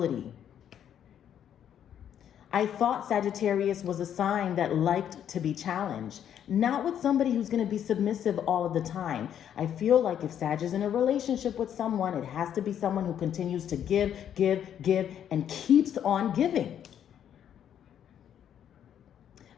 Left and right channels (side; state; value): right; quieter; 9.6 dB